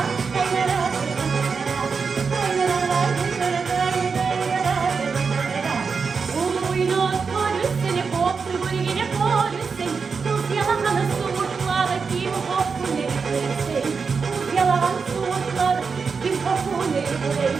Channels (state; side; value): quieter; left; 5.3 dB